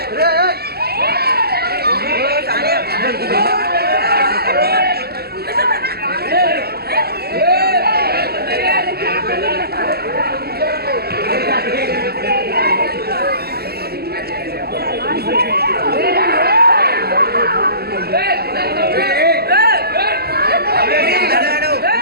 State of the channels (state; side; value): late; left; 0.46 ms